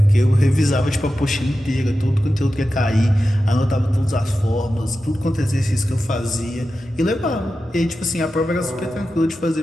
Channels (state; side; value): normal; both; correlation 0.92